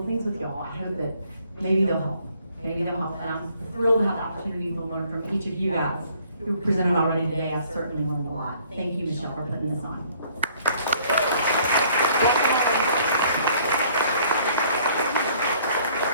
things with y'all. I hope that maybe they'll help. And I'm thrilled to have the opportunity to learn from each of you guys who presented already today. I've certainly learned a lot. Thank you, Michelle, for putting this on.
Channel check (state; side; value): inverted; both; correlation -0.61